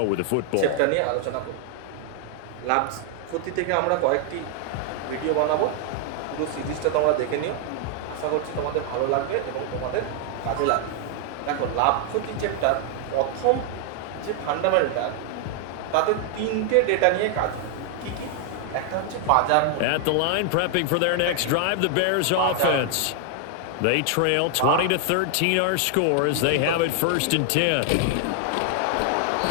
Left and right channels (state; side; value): different; both; correlation 0.00